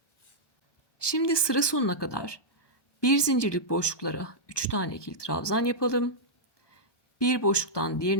Şimdi sıra sonuna kadar bir zincirlik boşluklara 3 tane ikili trabzan yapalım. Bir boşluktan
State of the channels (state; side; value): late; right; 1.2 ms